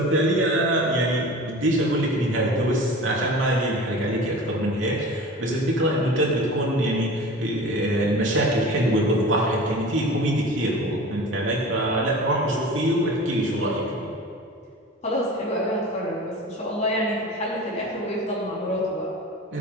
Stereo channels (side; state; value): both; normal; correlation 0.37